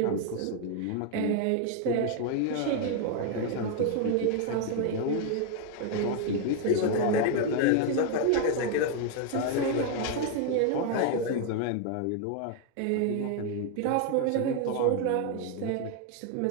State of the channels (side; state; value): both; different; correlation 0.01